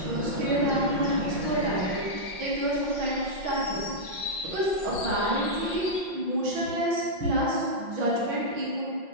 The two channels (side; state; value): left; late; 5.6 ms